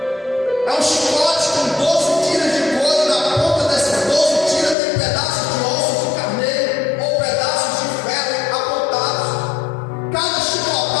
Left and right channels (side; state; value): right; drops out; at 4.8 s